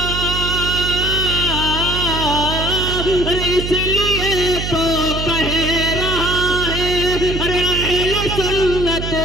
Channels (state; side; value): noise; right; hum, 5 dB below the sound